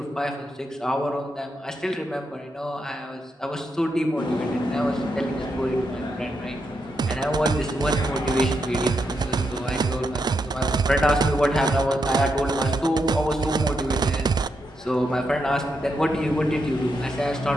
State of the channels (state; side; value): normal; both; correlation 0.82